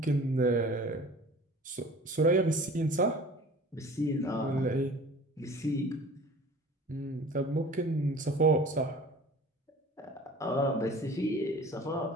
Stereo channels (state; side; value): normal; both; correlation 0.44